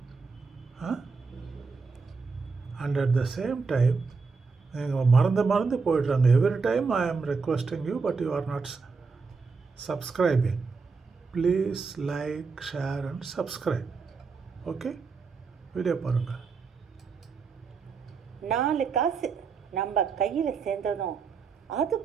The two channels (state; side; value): quieter; left; 4.8 dB